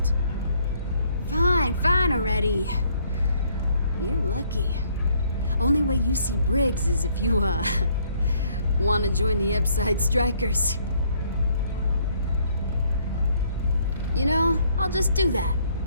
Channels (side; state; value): both; inverted; correlation -0.66